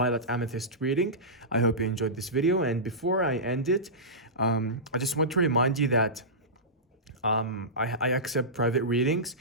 Amethyst reading. I hope you enjoyed this video. And before I end it, I just want to remind you that I accept private readings.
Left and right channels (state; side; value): normal; both; correlation -0.17